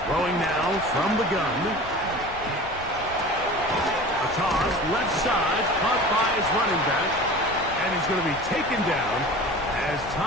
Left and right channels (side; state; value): left; noise; rumble, 15 dB below the sound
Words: Throwing now from the gun. A toss, left side, caught by his running back. And he's going to be taken down as